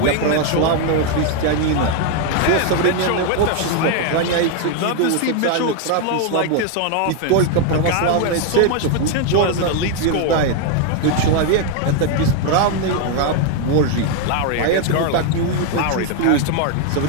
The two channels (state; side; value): different; both; correlation 0.01